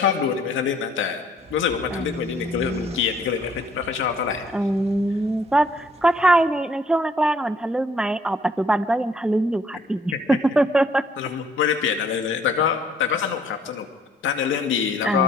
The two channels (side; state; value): both; normal; correlation 0.63